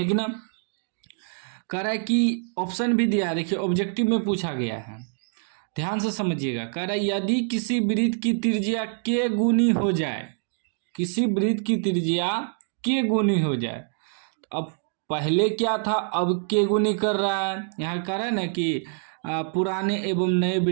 ना। कह रहा है कि ऑप्शन भी दिया है, देखिए ऑब्जेक्टिव में पूछा गया है, ध्यान से समझिएगा। कह रहा है यदि किसी वृत्त की त्रिज्या के गुनी हो जाए, किसी वृत्त की त्रिज्या के गुनी हो जाए, तो अब पहले क्या था, अब के गुनी कर रहा है। यहाँ कह रहा है ना कि पुराने एवं नए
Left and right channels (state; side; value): silent; left; 57 dB below the other